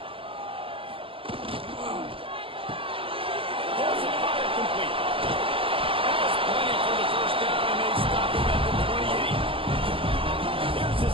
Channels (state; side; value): late; left; 0.26 ms